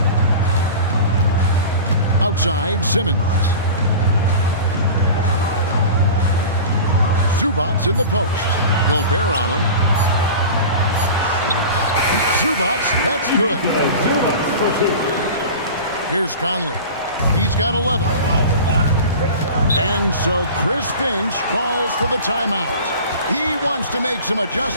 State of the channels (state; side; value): inverted; both; correlation -0.35